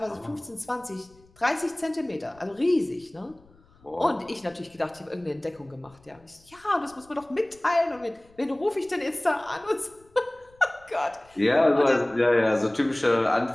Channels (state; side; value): noise; left; rumble, 29 dB below the sound